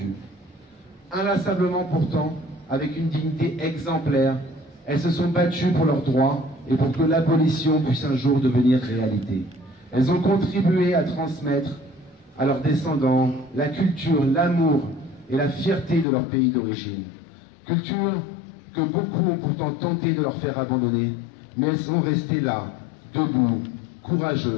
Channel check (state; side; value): drops out; right; at 16.1 s